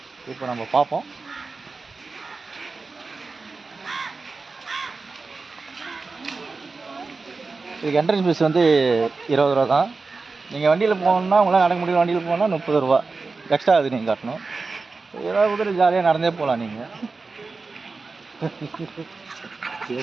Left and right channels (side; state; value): left; quieter; 4.1 dB